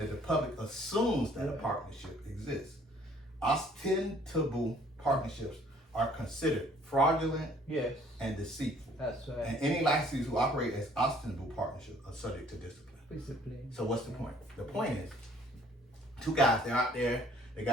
the public assumes that a partnership exists. Ostensible partnerships are considered fraudulent and deceitful. That's right. And any licensees who operate as ostensible partnerships are subject to discipline. So what's the point? The point is, two guys, they're out there, they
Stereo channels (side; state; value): both; normal; correlation 0.58